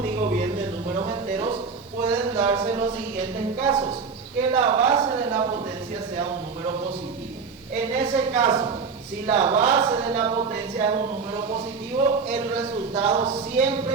digo bien, de números enteros, pueden darse los siguientes casos. Que la base de la potencia sea un número positivo. En ese caso, si la base de la potencia es un número positivo, el resultado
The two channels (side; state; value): left; quieter; 5.1 dB